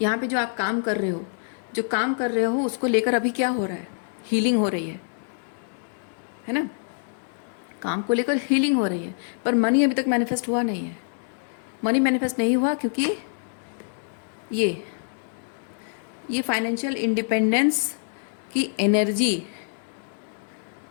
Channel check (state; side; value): silent; right; digital silence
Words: यहाँ पे जो आप काम कर रहे हो, उसको लेकर अभी क्या हो रहा है? हीलिंग हो रही है ना। काम को लेकर हीलिंग हो रही है, पर मनी अभी तक मैनिफेस्ट हुआ नहीं है। मनी मैनिफेस्ट नहीं हुआ क्योंकि ये फाइनेंशियल इंडिपेंडेंस की एनर्जी,